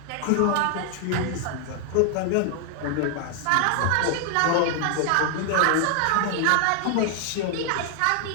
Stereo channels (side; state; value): both; different; correlation 0.00